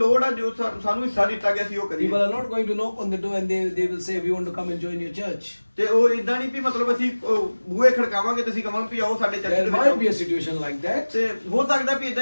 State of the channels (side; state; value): both; inverted; correlation -1.00